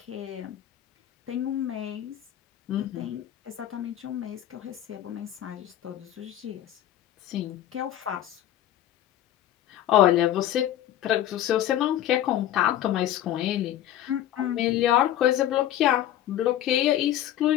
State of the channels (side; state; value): right; quieter; 12.1 dB